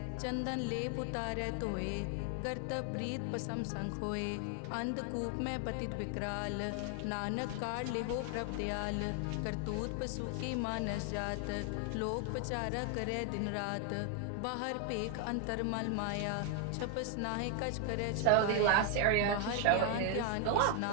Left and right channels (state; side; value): different; both; correlation 0.00